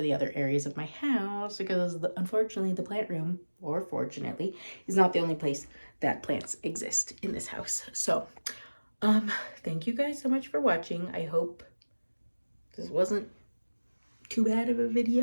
the other areas of my house because unfortunately the plant room, or fortunately, is not the only place that plants exist in this house. So thank you guys so much for watching. I hope this wasn't too bad of a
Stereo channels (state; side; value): inverted; both; correlation -1.00